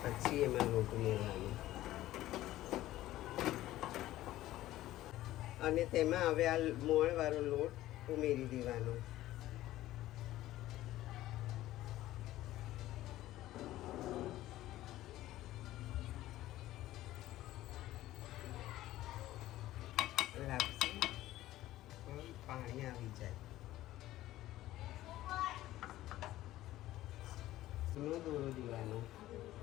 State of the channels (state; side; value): quieter; right; 15.1 dB